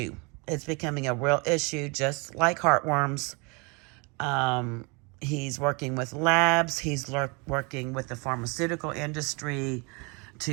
It's becoming a real issue, just like heartworms. He's working with labs. He's working with the pharmaceutical industry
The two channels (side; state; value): left; quieter; 30.2 dB